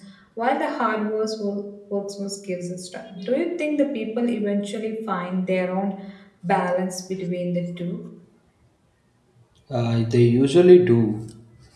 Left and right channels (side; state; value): both; identical; correlation 1.00